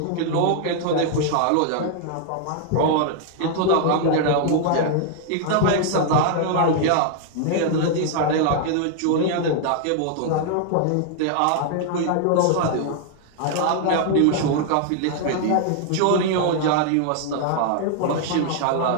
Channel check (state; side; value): different; both; correlation 0.00